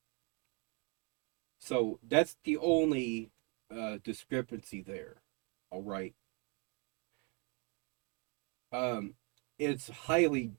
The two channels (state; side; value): quieter; left; 33.9 dB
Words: So that's the only discrepancy there. All right. It's highly